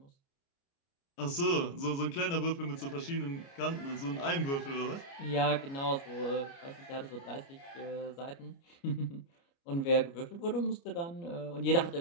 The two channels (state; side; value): late; right; 29 ms